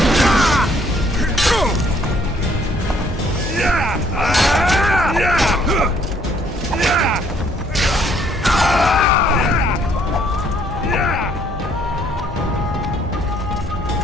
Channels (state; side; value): normal; both; correlation 0.64